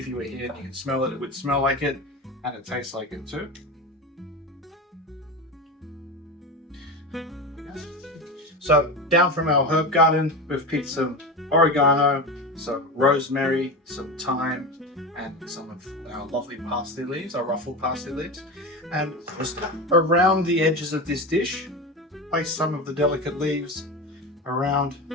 you were here and you can smell it, it would smell like it, and it tastes like it too. So down from our herb garden, we've picked some oregano, some rosemary, some thyme, and some of our lovely parsley leaves, our ruffled parsley leaves. And just around the edges of this dish, place some of the delicate leaves around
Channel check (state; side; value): normal; both; correlation 0.23